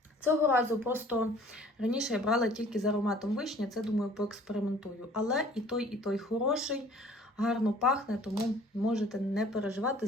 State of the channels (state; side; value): normal; both; correlation 0.52